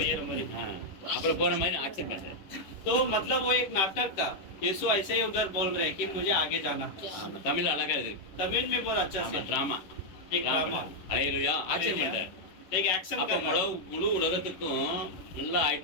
मरी। அப்புறம் போற மாதிரி ஆக்சன் பண்றேன் तो मतलब वो एक नाटक था। यीशु ऐसे ही उधर बोल रहे हैं कि मुझे आगे जाना है। ஆமா தமிழ் அழகா இருக்கு तमिल में बहुत अच्छा ஆமா से டிராமா एक ड्रामा ஹalleluya ஆக்சன் பண்றேன் एक एक्शन அப்ப करना। முழு உலகத்துக்கும் நல்லா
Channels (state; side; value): late; right; 11 ms